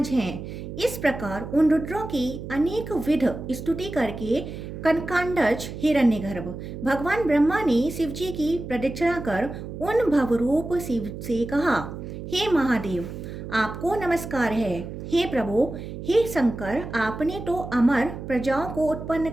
हैं। इस प्रकार उन रुद्रों की अनेक विध स्तुति करके कनकांडज हिरण्यगर्भ भगवान ब्रह्मा ने शिवजी की प्रदक्षिणा कर उन भवरूप शिव से कहा, हे महादेव, आपको नमस्कार है। हे प्रभु, हे शंकर, आपने तो अमर प्रजाओं को उत्पन्न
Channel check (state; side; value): noise; right; hum, 9 dB below the sound